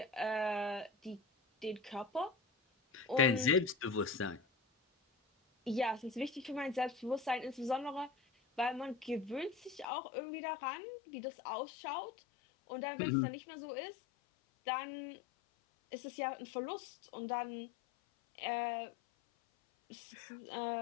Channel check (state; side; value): drops out; right; at 9.9 s